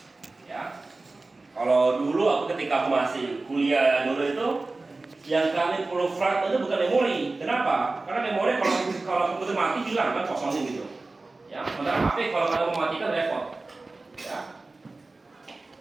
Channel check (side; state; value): left; quieter; 3.3 dB